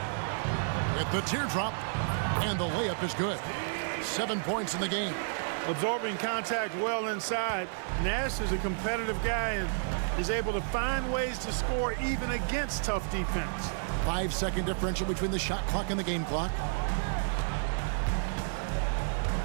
With the teardrop, and the layup is good. 7 points in the game. Absorbing contact well inside. Nash is a competitive guy and is able to find ways to score even against tough defense. 5-second differential between the shot clock and the game clock.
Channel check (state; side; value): silent; left; 56 dB below the other